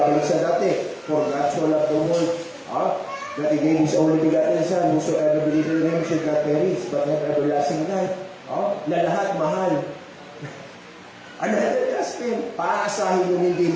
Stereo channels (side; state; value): both; identical; correlation 1.00